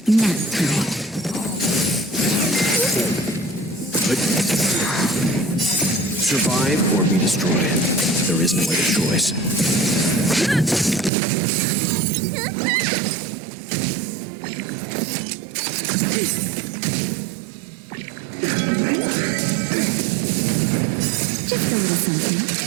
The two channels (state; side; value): drops out; left; at 11.1 s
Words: Nap time. Survive or be destroyed. There is no other choice. Just a little something.